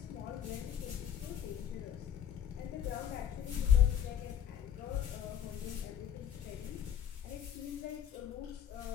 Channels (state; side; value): quieter; right; 9.3 dB